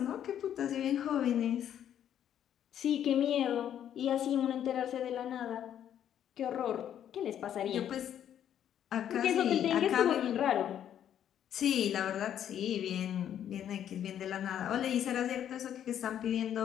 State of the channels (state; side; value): quieter; right; 10.1 dB